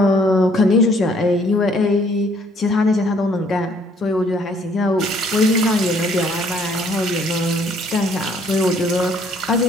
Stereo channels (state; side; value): normal; both; correlation 0.63